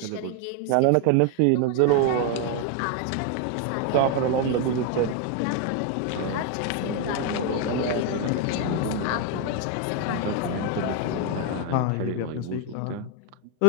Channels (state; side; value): different; both; correlation 0.01